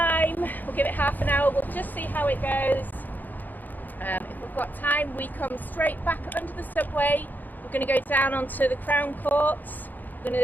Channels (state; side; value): late; right; 0.085 ms